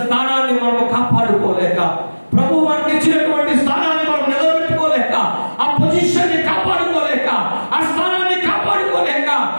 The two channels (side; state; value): both; inverted; correlation -1.00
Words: స్థానాన్ని మనం కాపాడుకోలేక, ప్రభు మనకి ఇచ్చినటువంటి స్థానాన్ని మనం నిలబెట్టుకోలేక, ఆ పొజిషన్ని కాపాడుకోలేక, ఆ స్థానాన్ని కాపాడుకోలేక,